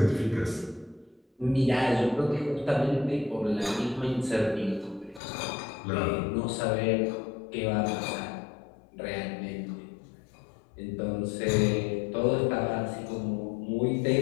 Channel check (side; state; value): right; drops out; at 5.2 s